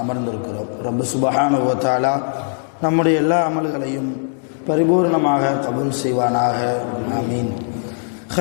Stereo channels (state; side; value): silent; right; digital silence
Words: அமர்ந்திருக்கிறோம். ரப்பு சுப்ஹானஹு வ தஆலா நம்முடைய எல்லா அமல்களையும் பரிபூர்ணமாக கபூல் செய்வானாக. ஆமீன்.